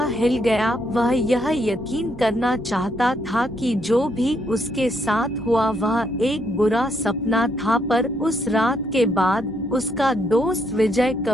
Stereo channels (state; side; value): normal; both; correlation 0.74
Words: हिल गया। वह यह यकीन करना चाहता था कि जो भी उसके साथ हुआ वह एक बुरा सपना था, पर उस रात के बाद उसका दोस्त विजय